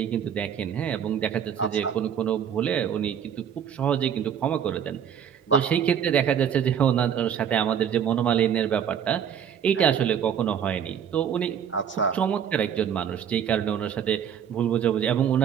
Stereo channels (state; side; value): quieter; left; 8.5 dB